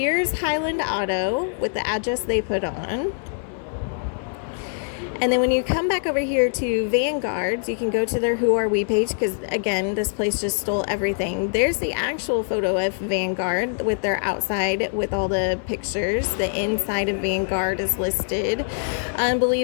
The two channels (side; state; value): right; silent; 63 dB below the other